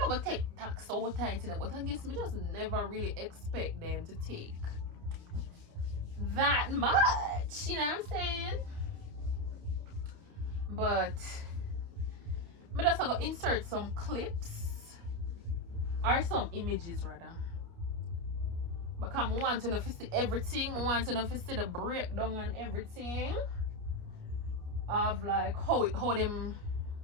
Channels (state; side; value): late; left; 29 ms